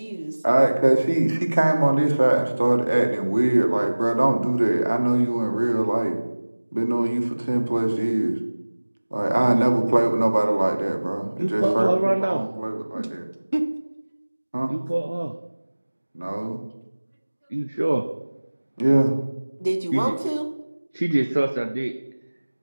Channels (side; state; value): both; inverted; correlation -1.00